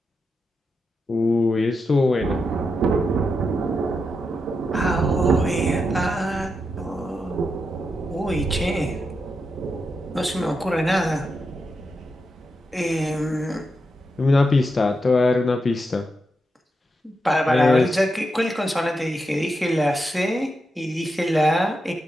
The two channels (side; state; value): both; normal; correlation 0.86